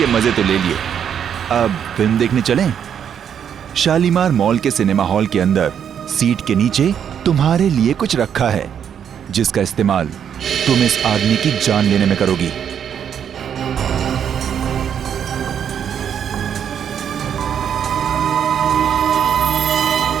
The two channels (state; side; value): quieter; left; 8.5 dB